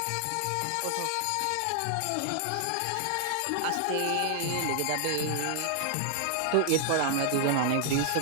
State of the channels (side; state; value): both; different; correlation 0.00